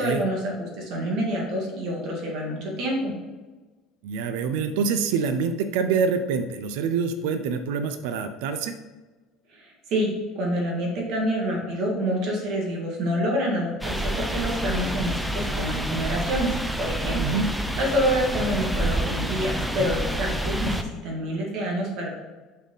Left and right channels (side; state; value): both; normal; correlation 0.40